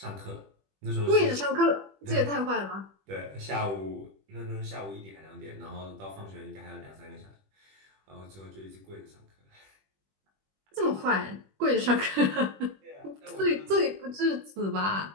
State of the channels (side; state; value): left; late; 21 ms